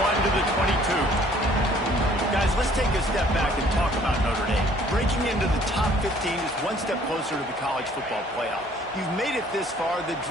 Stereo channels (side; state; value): both; normal; correlation 0.58